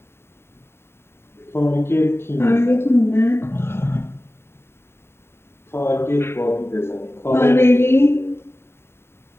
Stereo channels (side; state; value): right; late; 0.12 ms